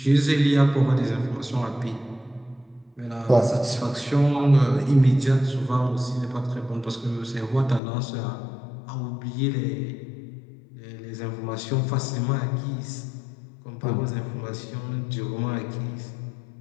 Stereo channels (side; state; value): right; drops out; at 7.8 s